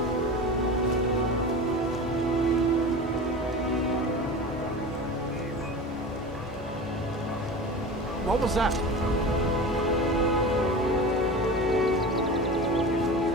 What was that?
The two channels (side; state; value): both; normal; correlation 0.31